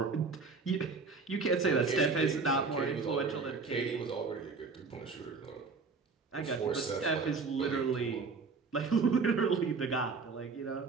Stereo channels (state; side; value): quieter; left; 4.5 dB